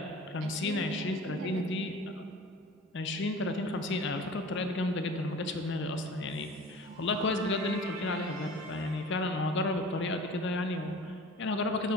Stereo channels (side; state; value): both; normal; correlation 0.42